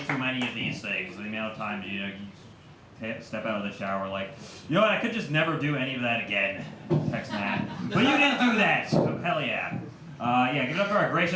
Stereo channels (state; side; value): identical; both; correlation 1.00